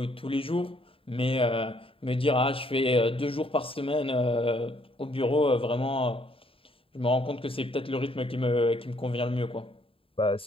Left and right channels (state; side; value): late; right; 0.27 ms